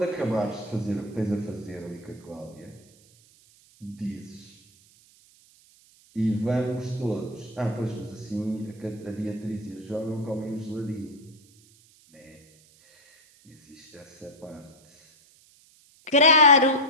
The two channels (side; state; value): right; noise; hiss, 28 dB below the sound